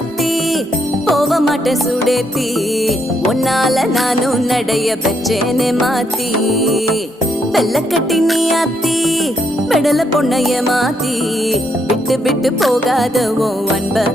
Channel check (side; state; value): both; normal; correlation 0.76